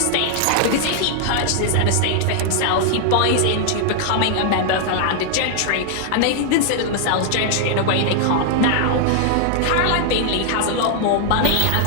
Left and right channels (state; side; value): different; both; correlation 0.00